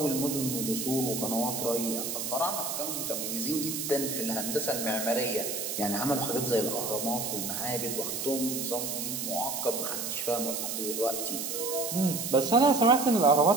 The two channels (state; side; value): noise; right; hiss, 3 dB below the sound